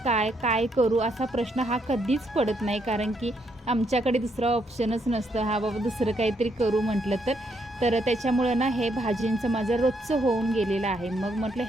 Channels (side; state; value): both; normal; correlation 0.75